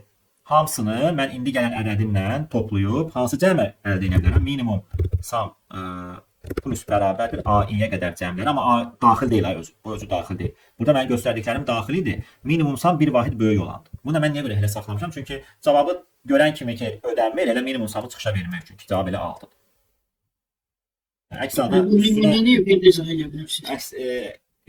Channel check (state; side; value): identical; both; correlation 1.00